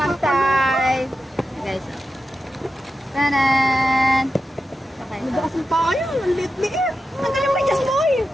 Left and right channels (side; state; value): both; normal; correlation 0.90